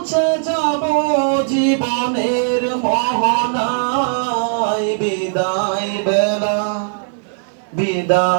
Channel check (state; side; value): silent; left; digital silence